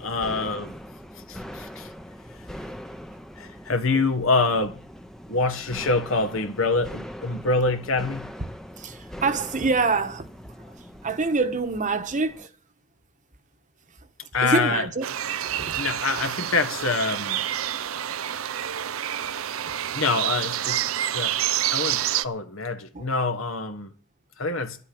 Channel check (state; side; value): normal; both; correlation 0.04